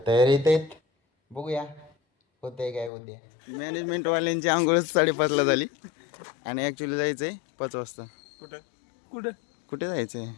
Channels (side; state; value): right; drops out; at 2.9 s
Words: तयारीत आहेत. बघूया होतंय काय उद्या. मॅनेजमेंटवाल्यांची आंघोळच 5:30ला झाली आणि ॲक्च्युली जायचं आहे 5 वाजता. कुठं कुठं कुठे जायचं आहे?